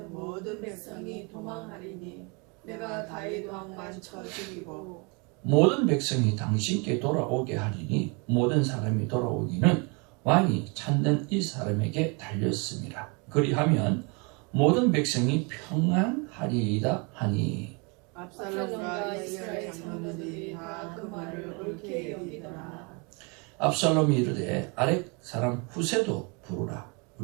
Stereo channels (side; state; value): left; quieter; 31.7 dB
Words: 모든 백성이 도망하리니 내가 다윗 왕만 쳐 죽이고 모든 백성이 당신께 돌아오게 하리니 모든 사람이 돌아오기는 왕이 찾는 이 사람에게 달렸습니다. 그리하면 모든 백성이 평안하리이다 하니 압살롬과 이스라엘 장로들이 다 그 말을 옳게 여기더라. 압살롬이 이르되 아렉 사람 후세도 부르라.